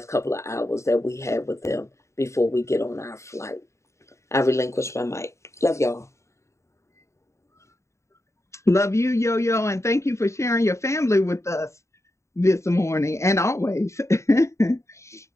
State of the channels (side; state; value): right; late; 0.14 ms